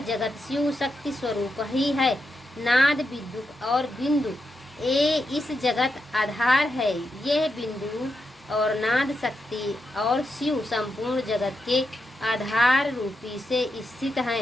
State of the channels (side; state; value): both; normal; correlation 0.86